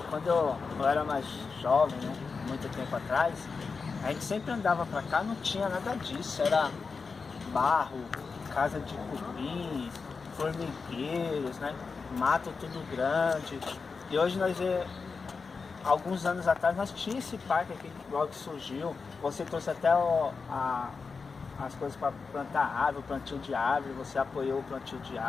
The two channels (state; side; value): quieter; right; 4.8 dB